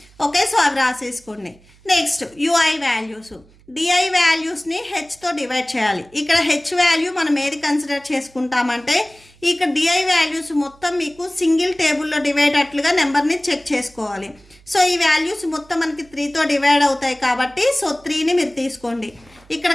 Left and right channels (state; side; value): noise; right; hum, 28 dB below the sound